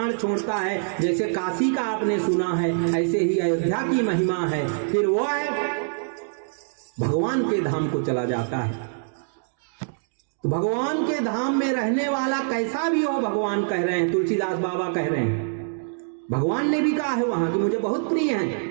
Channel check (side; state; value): left; silent; digital silence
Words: छोड़ता है, जैसे काशी का आपने सुना है, ऐसे ही अयोध्या की महिमा है। फिर वो भगवान के धाम को चला जाता है। तो भगवान के धाम में रहने वाला कैसा भी हो, भगवान कह रहे हैं, तुलसीदास बाबा कह रहे हैं। भगवान ने भी कहा है वहां कि मुझे बहुत प्रिय